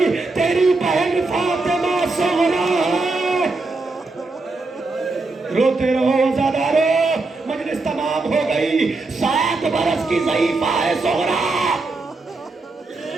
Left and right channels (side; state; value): left; quieter; 3.5 dB